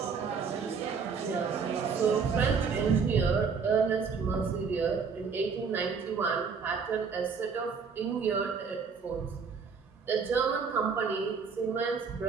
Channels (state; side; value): quieter; left; 5.6 dB